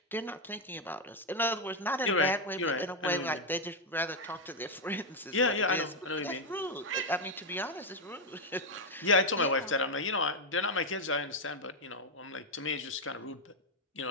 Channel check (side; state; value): both; normal; correlation 0.04